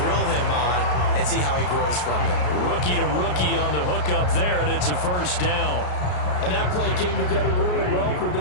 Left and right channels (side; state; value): right; late; 33 ms